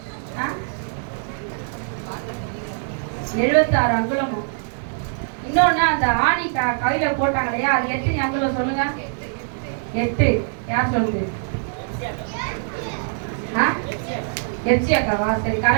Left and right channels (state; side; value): silent; left; 64 dB below the other